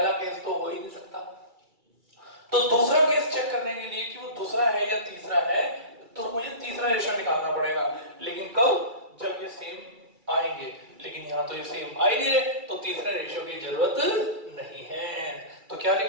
केस तो हो ही नहीं सकता। तो दूसरा केस चेक करने के लिए कि वो दूसरा है या तीसरा है, तो मुझे तीसरा रेशो निकालना पड़ेगा। लेकिन कब? जब ये सेम आएंगे। लेकिन यहां तो ये सेम आ ही नहीं रहे, तो तीसरे रेशो की जरूरत नहीं है। तो क्या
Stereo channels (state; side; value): late; left; 2.3 ms